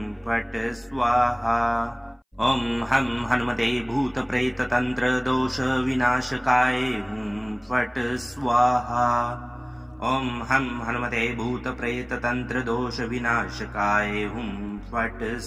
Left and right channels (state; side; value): identical; both; correlation 1.00